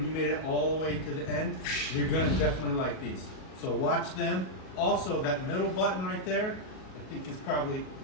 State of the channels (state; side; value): late; right; 37 ms